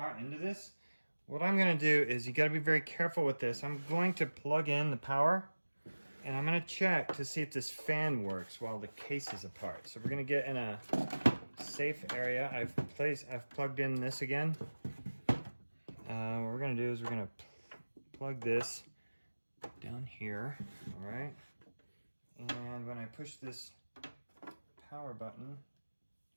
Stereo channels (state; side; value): inverted; both; correlation -1.00